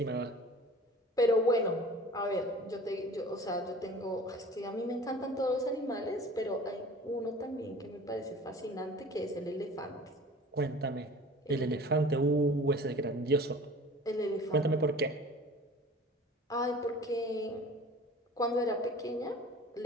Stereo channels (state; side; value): normal; both; correlation 0.43